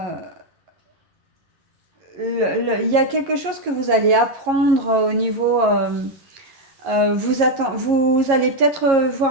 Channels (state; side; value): late; left; 11 ms